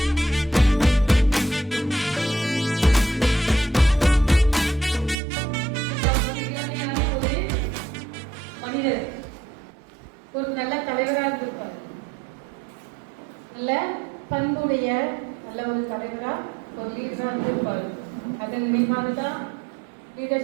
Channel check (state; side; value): drops out; left; at 5.2 s